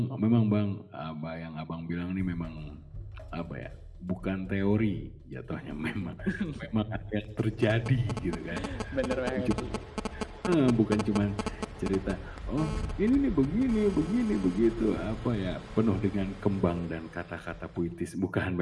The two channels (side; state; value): both; identical; correlation 1.00